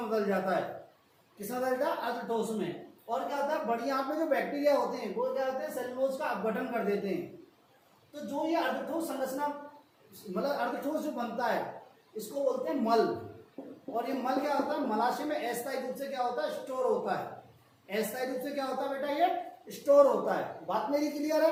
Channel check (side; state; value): both; identical; correlation 1.00